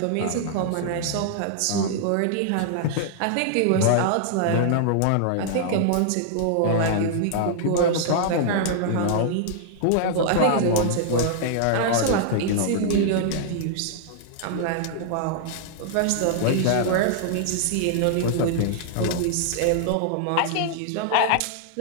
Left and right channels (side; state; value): both; different; correlation -0.01